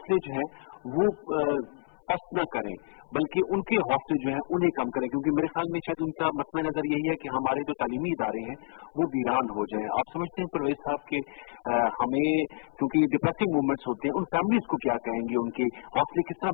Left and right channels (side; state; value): right; silent; 59 dB below the other